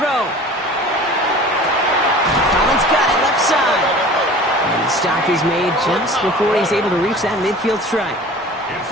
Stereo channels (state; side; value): normal; both; correlation 0.42